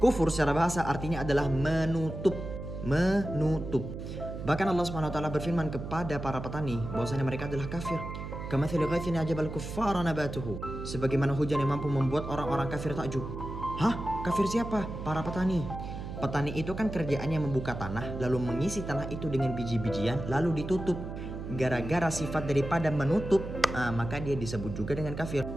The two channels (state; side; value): noise; right; hum, 8 dB below the sound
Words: Kufur secara bahasa artinya adalah menutup. Menutup. Bahkan Allah Subhanahu wa Ta'ala berfirman kepada para petani bahwasanya mereka adalah kafir. Kamathali ghaithin ajabal kuffara nabatuhu. Sebagaimana hujan yang mampu membuat orang-orang kafir takjub. Hah? Kafir siapa? Para petani. Petani itu kan kerjaannya membuka tanah, lalu mengisi tanah itu dengan biji-bijian, lalu ditutup. Gara-gara sifat daripada menutup, maka dia disebut juga dengan kafir.